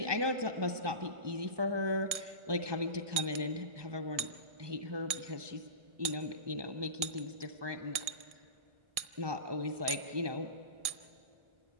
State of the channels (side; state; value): left; late; 1.7 ms